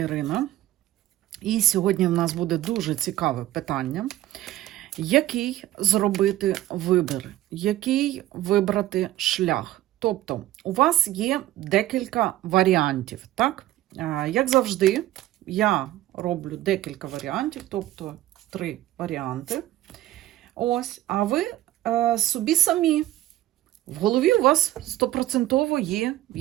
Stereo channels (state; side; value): quieter; left; 14.6 dB